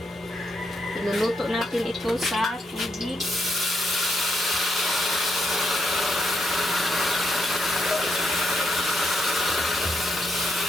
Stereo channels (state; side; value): normal; both; correlation 0.79